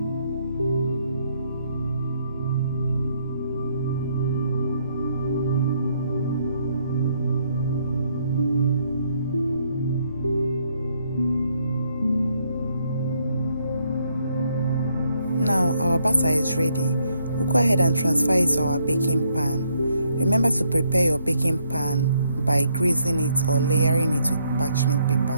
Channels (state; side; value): inverted; both; correlation -0.72